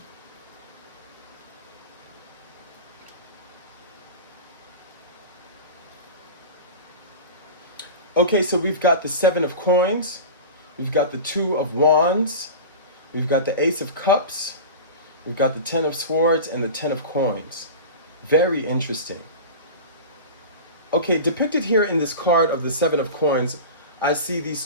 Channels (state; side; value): inverted; both; correlation -0.30